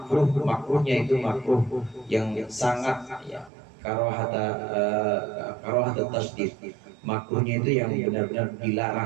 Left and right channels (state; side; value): drops out; left; at 3.5 s